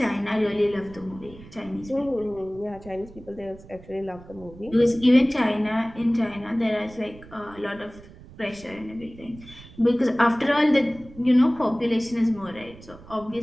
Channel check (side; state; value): right; noise; rumble, 19 dB below the sound